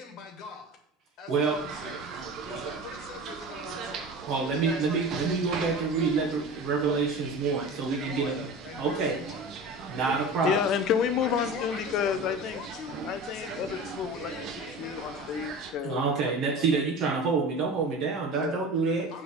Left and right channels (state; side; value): normal; both; correlation 0.34